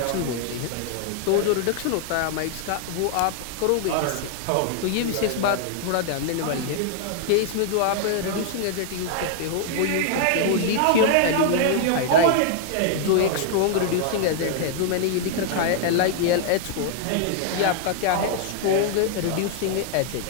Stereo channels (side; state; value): both; different; correlation 0.00